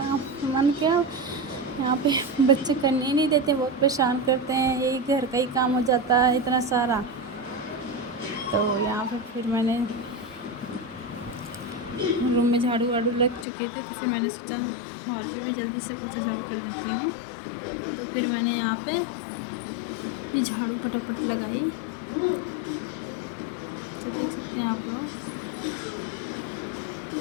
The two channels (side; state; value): right; drops out; at 13.5 s